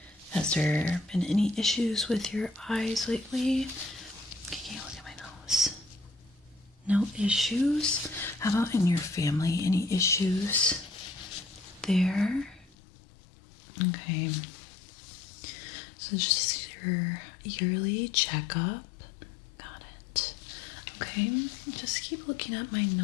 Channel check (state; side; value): drops out; right; at 12.8 s